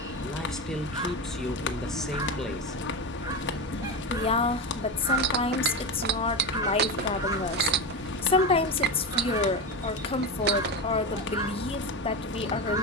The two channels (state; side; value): normal; both; correlation 0.19